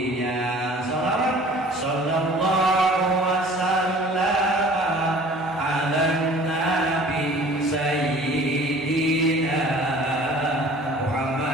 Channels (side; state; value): both; normal; correlation 0.48